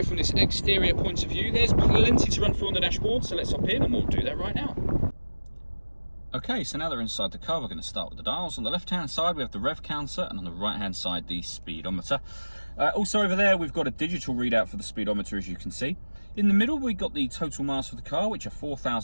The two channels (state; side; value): inverted; both; correlation -1.00